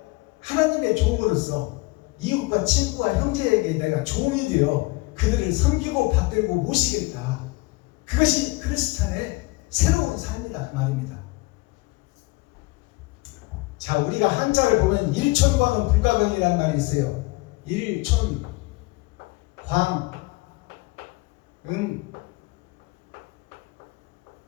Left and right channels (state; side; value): quieter; right; 23.7 dB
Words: 하나님의 종으로서 이웃과 친구와 형제에게 내가 종이 되어 그들을 섬기고 받들고 모시겠다. 그것이 크리스찬의 새로운 삶이다 그 말입니다. 자, 우리가 한자를 보면 일촌광은 불가경이라는 말이 있어요. 일촌, 광,